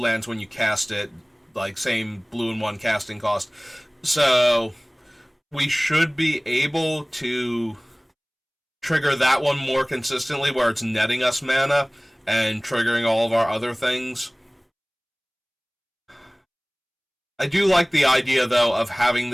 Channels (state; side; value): identical; both; correlation 1.00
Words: when you cast it. Like, same blue and 1 casting cost. So we should be able to trigger that one more consistently, where it's netting us mana and triggering all of our other things. I do like the idea, though, of having